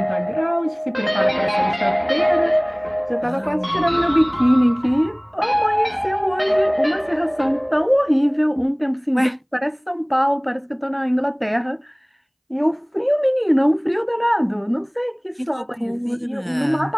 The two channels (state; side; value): identical; both; correlation 1.00